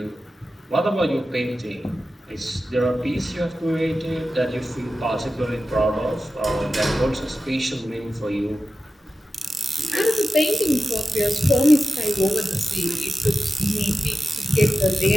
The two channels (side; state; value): both; normal; correlation 0.93